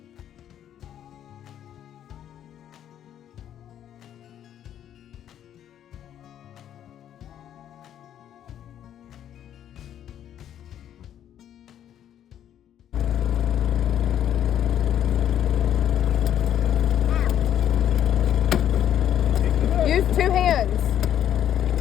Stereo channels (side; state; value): right; quieter; 10.4 dB